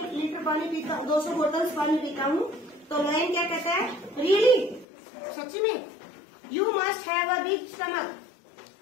लीटर पानी पीता हूँ, 200 बोतल्स पानी पीता हूँ, तो लोयन क्या कहता है? रियली, सच्ची में? You must have a big stomach.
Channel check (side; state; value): right; drops out; at 4.9 s